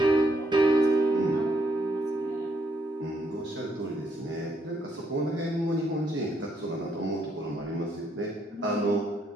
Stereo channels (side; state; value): both; normal; correlation 0.74